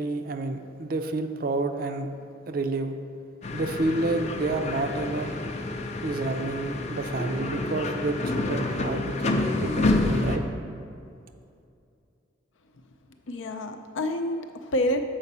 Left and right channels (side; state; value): both; normal; correlation 0.47